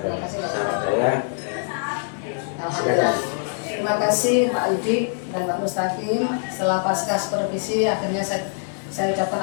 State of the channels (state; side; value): silent; right; 63 dB below the other